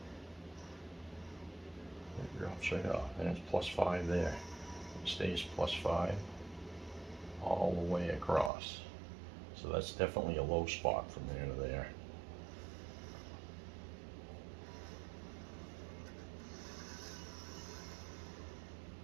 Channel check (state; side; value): drops out; left; at 8.5 s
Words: It drops right off, and it's +5 there. It stays +5 all the way across. So that's definitely a low spot from there to there.